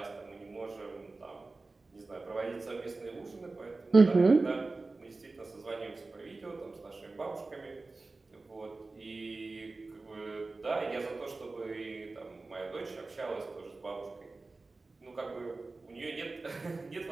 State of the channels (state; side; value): quieter; left; 3.5 dB